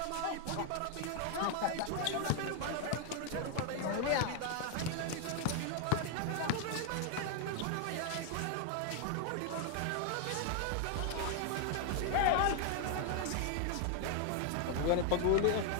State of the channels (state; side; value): different; both; correlation 0.00